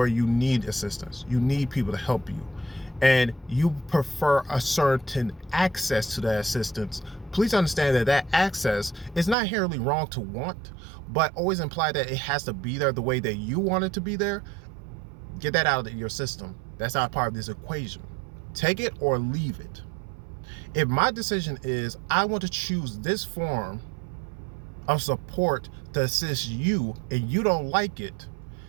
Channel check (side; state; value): left; drops out; at 9.3 s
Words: you need assistance, you need people to help you, and you prefer a certain access to that assistance, please understand that that access is not inherently wrong to want, but always imply that it has to be there the way that you want it to be there. Get that out of your system. That's not part of this equation. Take it or leave it. If my decision is I want to choose this form of support to assist you and you don't like it,